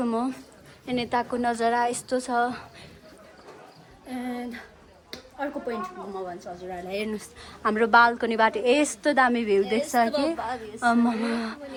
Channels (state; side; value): identical; both; correlation 1.00